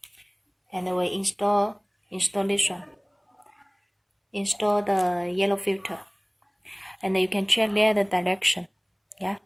And we install this one. Install the yellow filter, and you can check there the direction, yeah,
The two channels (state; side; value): identical; both; correlation 1.00